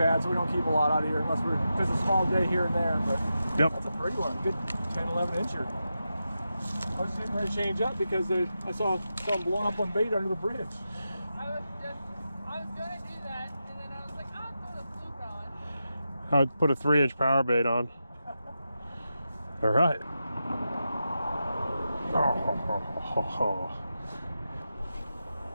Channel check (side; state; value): both; inverted; correlation -0.89